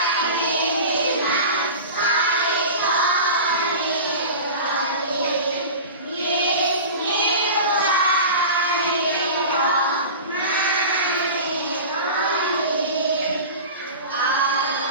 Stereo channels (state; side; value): inverted; both; correlation -0.33